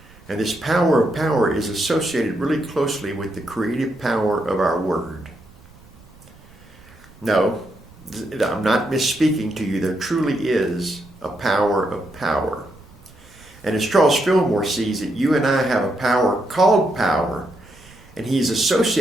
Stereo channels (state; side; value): noise; right; rumble, 25 dB below the sound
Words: And this power of power is associated really closely with the creative power of our word. No, I'm not misspeaking to you. There truly is a power of power. And as Charles Fillmore sees it, you and I have a power called power, and he's